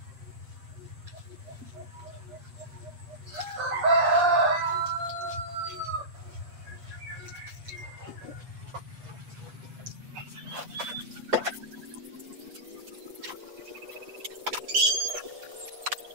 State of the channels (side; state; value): left; late; 8.4 ms